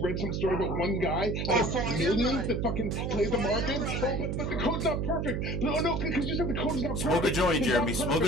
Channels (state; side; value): noise; right; hum, 1 dB below the sound